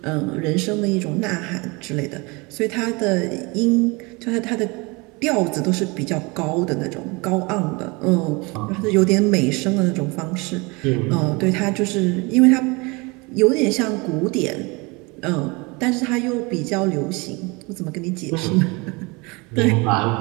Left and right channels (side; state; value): left; quieter; 26.9 dB